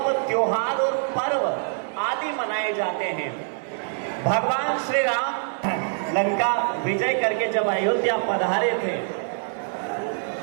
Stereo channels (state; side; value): silent; left; digital silence